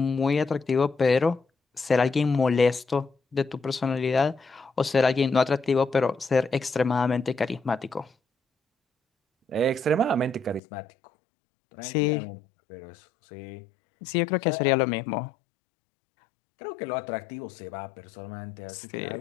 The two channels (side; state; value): right; drops out; at 10.6 s